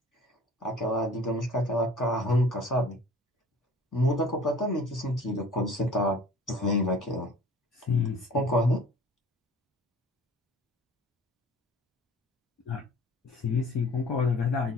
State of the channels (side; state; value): both; normal; correlation 0.48